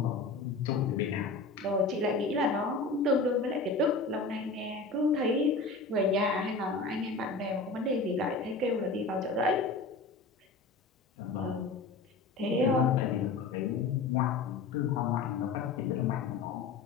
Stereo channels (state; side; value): quieter; right; 3.9 dB